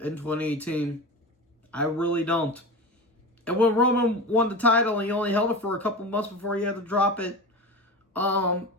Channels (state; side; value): normal; both; correlation 0.28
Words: in 2018. I really don't. And when Roman won the title, he only held it for a couple months before he had to drop it